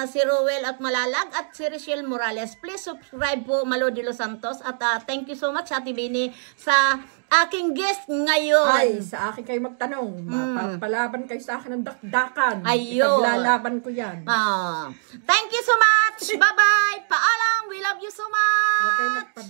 Si Rowel at Malalag at si Rochelle Morales. Please subscribe po Malo de los Santos. At thank you so much Ate Bini sa aking guest ngayon. Ay, sa akin kayo magtanong. Mapapalaban kayo sa akin ng dakdakan. Ayun. Ipaglalaban ko yan. Thank you so much. Bye-bye. Paalam. We love you so much. Okay,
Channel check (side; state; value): left; silent; digital silence